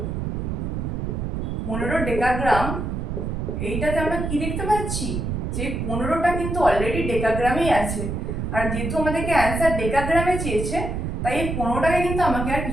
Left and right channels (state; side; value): noise; right; rumble, 3 dB below the sound